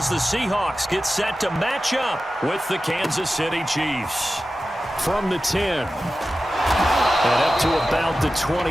the Seahawks get set to match up with the Kansas City Chiefs. From the 10. And up to about the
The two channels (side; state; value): both; normal; correlation 0.94